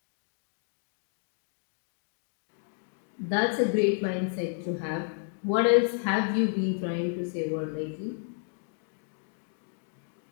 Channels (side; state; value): right; silent; 57 dB below the other